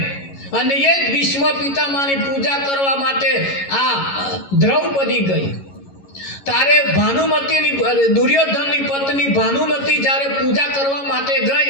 અને એ જ ભીષ્મ પિતામાની પૂજા કરવા માટે આ દ્રૌપદી ગઈ. તારે ભાનુમતીની, દુર્યોધનની પત્ની ભાનુમતી જ્યારે પૂજા કરવા માટે ગઈ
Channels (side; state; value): right; late; 11 ms